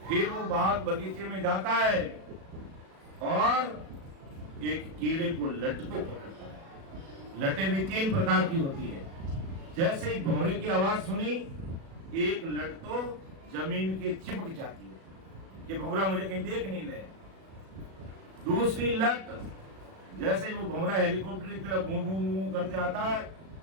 फिर वो बाग बगीचे में जाता है और एक कीड़े को लट को पकड़ता है। लटें भी 3 प्रकार की होती है। जैसे ही भौरे की आवाज सुनी, एक लट तो जमीन के चिपक जाती है कि भौरा मुझे कहीं देख नहीं ले। दूसरी लट, जैसे ही वो भौरा हेलीकॉप्टर की तरफ भूं करते आता है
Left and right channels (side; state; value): left; late; 37 ms